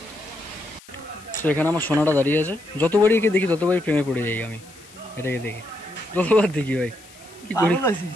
তো এখানে আমার সোনাটা দাঁড়িয়ে আছে। যতবারই একে দেখি ততবারই প্রেমে পড়ে যাই আমি। এটাকে দেখি যতবার দেখি ভাই কি করি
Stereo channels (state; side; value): noise; left; hiss, 23 dB below the sound